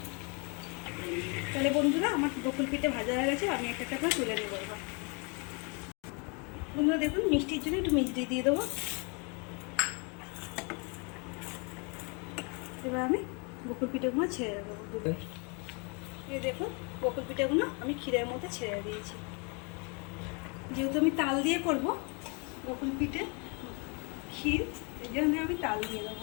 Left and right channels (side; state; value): right; quieter; 33.3 dB